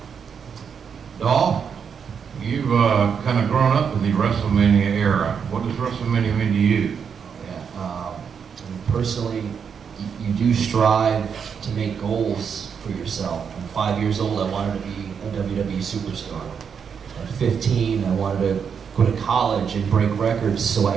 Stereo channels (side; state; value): left; quieter; 6.8 dB